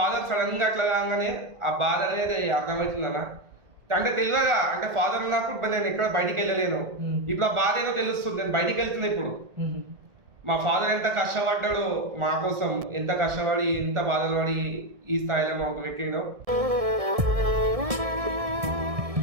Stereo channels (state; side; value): late; left; 1.6 ms